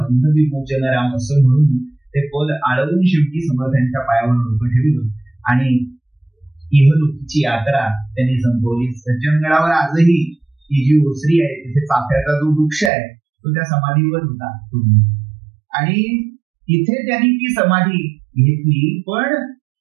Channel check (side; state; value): left; drops out; at 12.9 s